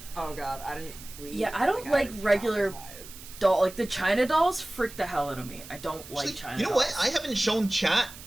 oh god, I didn't sleep. Yeah, I don't I like was regular traumatized. doll. Like the China dolls freak the hell out of me. I don't like Actually, China you know dolls. what? I haven't shown chat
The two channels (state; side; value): noise; right; hiss, 16 dB below the sound